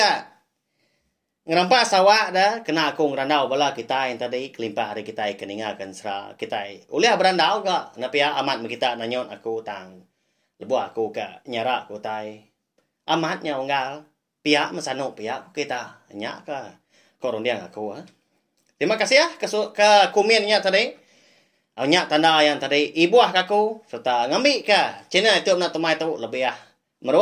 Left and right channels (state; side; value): identical; both; correlation 1.00